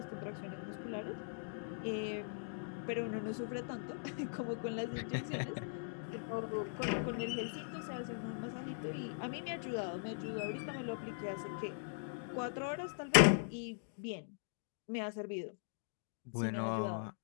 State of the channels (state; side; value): silent; right; digital silence